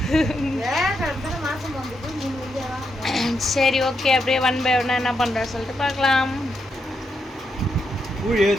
சரி ஓகே, அப்படியே ஒன் பை ஒன்னா என்ன பண்ணுற சொல்லிட்டு பார்க்கலாம்.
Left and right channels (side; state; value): both; normal; correlation 0.82